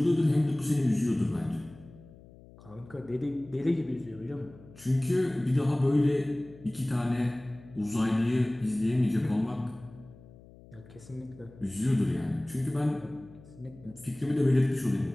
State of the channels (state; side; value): noise; left; hum, 22 dB below the sound